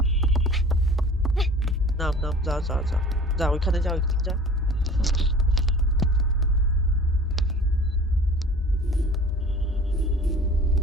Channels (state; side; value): normal; both; correlation 0.44